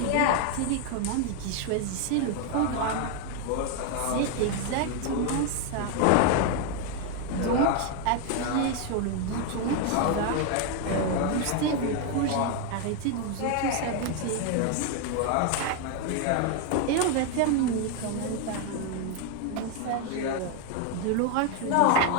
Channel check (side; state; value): both; different; correlation 0.01